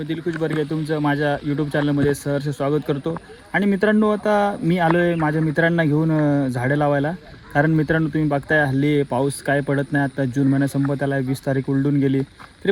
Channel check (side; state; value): both; identical; correlation 1.00